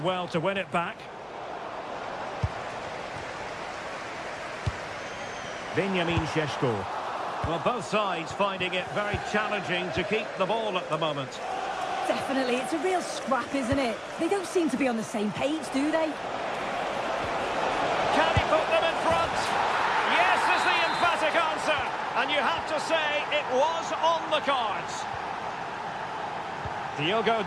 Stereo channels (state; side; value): identical; both; correlation 1.00